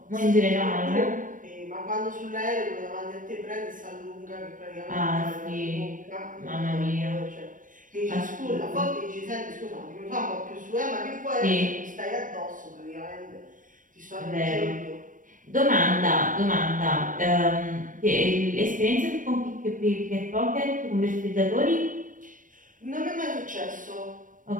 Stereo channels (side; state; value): left; late; 0.38 ms